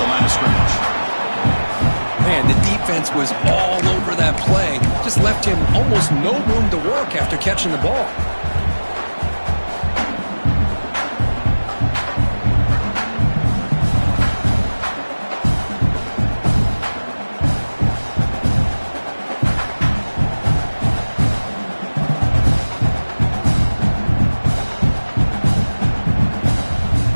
line of scrimmage. Man, the defense was all over that play. Just left him almost no room to work after catching the ball.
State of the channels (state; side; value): inverted; both; correlation -1.00